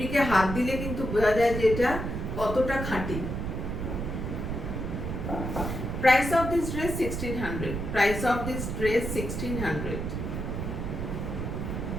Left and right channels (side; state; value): right; noise; rumble, 4 dB below the sound